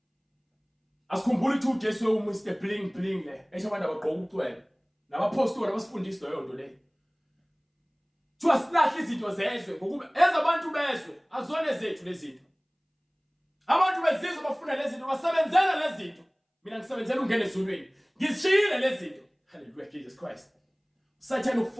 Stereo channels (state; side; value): identical; both; correlation 1.00